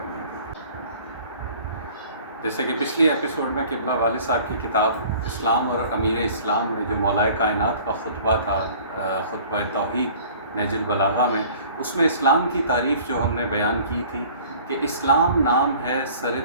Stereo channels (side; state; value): both; inverted; correlation -0.49